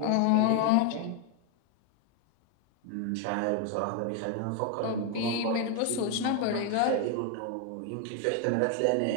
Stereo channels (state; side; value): different; both; correlation 0.01